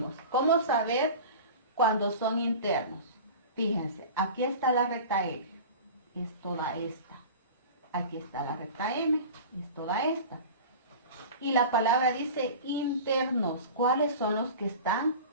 cómo saber cuando son internos. Fíjense, aquí está la recta L, es toda esta. Aquí está la recta M, es toda esta. Y la palabra dice internos. ¿Cuáles son los que están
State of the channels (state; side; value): inverted; both; correlation -0.35